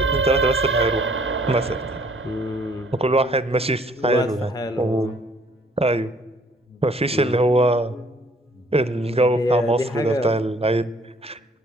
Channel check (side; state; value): both; normal; correlation 0.60